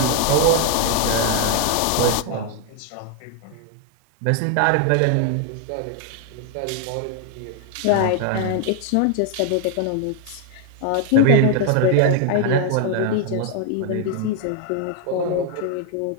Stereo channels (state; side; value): different; both; correlation 0.00